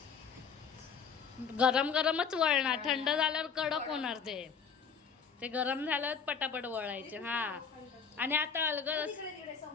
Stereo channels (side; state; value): right; quieter; 6.3 dB